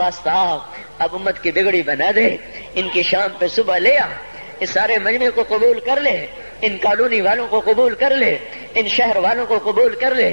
اب امت کی بگڑی بنا دے، ان کی شام پہ صبح لے آ، اس سارے مجمع کو قبول کر لے، ان کالونی والوں کو قبول کر لے، ان شہر والوں کو قبول کر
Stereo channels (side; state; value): both; inverted; correlation -1.00